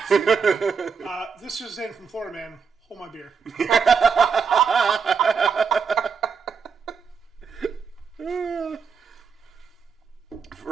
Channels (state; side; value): quieter; left; 5.9 dB